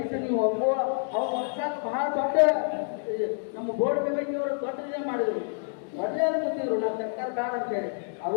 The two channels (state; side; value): silent; right; digital silence